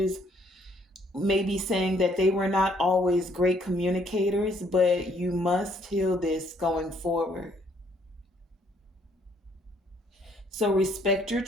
may be saying that they were not always great communicators, but you must heal this going forward. So respect your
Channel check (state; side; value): normal; both; correlation 0.66